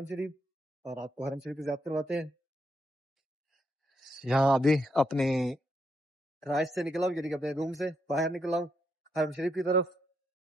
شریف اور آپ کو حرم شریف کی زیارت کرواتے ہیں. یہاں ابھی اپنے رائش سے نکلا ہوں یعنی کہ اپنے روم سے باہر نکلا ہوں حرم شریف کی طرف.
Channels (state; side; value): normal; both; correlation 0.79